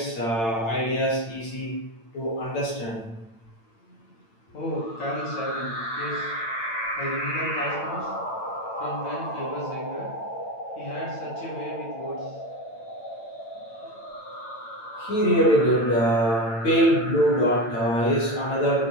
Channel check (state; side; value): late; right; 8.8 ms